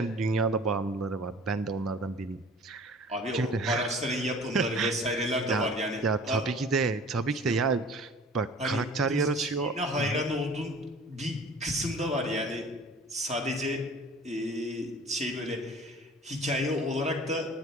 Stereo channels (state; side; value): normal; both; correlation 0.45